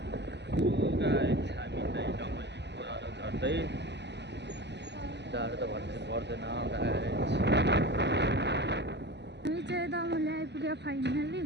हामी चाहिँ डमलीको अलो झर्दै जाडो त भन्नु पर्दैन गाइस हामी चाहिँ दमली आइपुग्यो फाइनली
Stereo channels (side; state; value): left; late; 0.50 ms